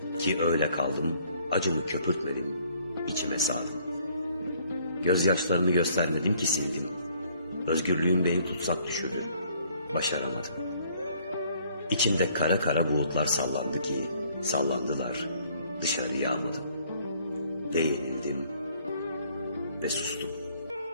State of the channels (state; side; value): inverted; both; correlation -0.62